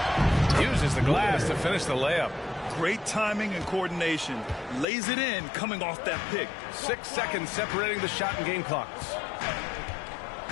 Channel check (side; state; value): right; drops out; at 4.9 s